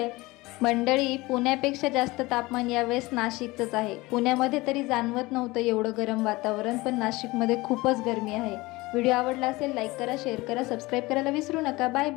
मंडळी, पुण्यापेक्षा जास्त तापमान यावेळेस नाशिकचंच आहे. पुण्यामध्ये तरी जाणवत नव्हतं एवढं गरम वातावरण, पण नाशिकमध्ये खूपच गरमी आहे. व्हिडिओ आवडला असेल लाईक करा, शेअर करा, सबस्क्राईब करायला विसरू नका. Bye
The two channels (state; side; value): quieter; right; 21.4 dB